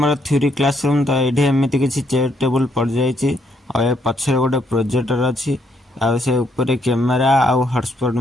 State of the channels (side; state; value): both; normal; correlation 0.72